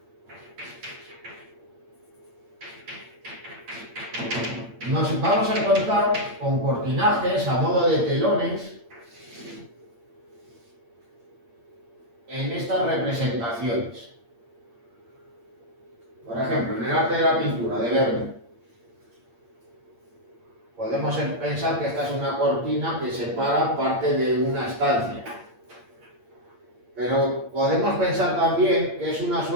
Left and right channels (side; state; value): left; late; 8.7 ms